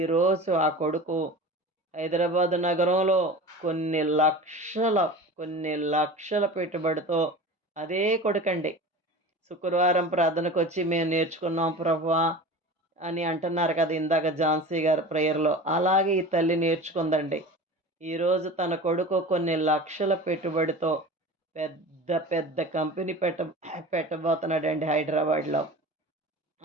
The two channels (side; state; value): both; normal; correlation 0.35